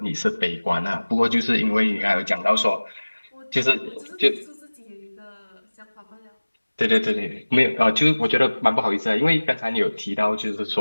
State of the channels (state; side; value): inverted; both; correlation -1.00